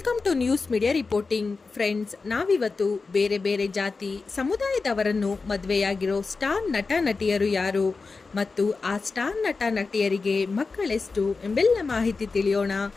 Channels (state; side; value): quieter; right; 4.2 dB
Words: to news media reporting. Friends, ನಾವಿವತ್ತು ಬೇರೆ ಬೇರೆ ಜಾತಿ ಸಮುದಾಯದವರನ್ನು ಮದುವೆಯಾಗಿರೋ ಸ್ಟಾರ್ ನಟ ನಟಿಯರು ಯಾರು ಮತ್ತು ಆ ಸ್ಟಾರ್ ನಟ ನಟಿಯರಿಗೆ ಮಕ್ಕಳೆಷ್ಟು ಎಂಬೆಲ್ಲ ಮಾಹಿತಿ ತಿಳಿಯೋಣ.